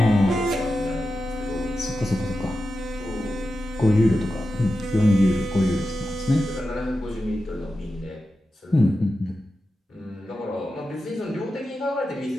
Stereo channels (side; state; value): both; normal; correlation 0.91